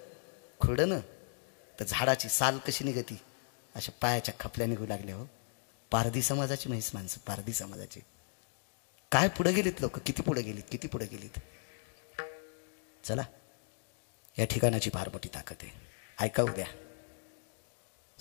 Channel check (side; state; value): right; silent; 54 dB below the other